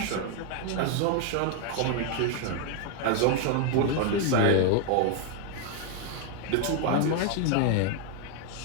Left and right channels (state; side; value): different; both; correlation 0.01